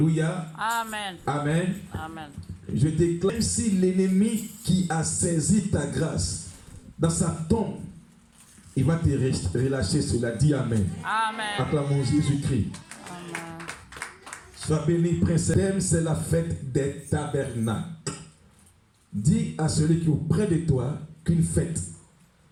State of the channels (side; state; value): both; identical; correlation 1.00